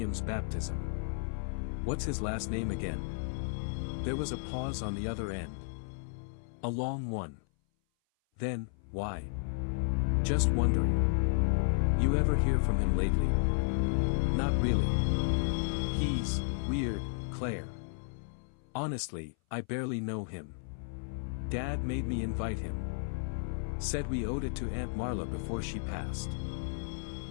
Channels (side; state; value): right; silent; 56 dB below the other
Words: baptism. What's his last name again?" There was a pause on the other end. A long one. Then, "Why?" "Just wondering. You ever hear from him lately?" "Not really. He's weird, Claire. Honestly, I barely know him. Dad made me invite him. Said we owed it to Aunt Marla before she passed."